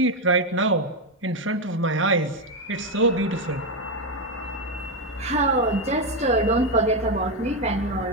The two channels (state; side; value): normal; both; correlation 0.07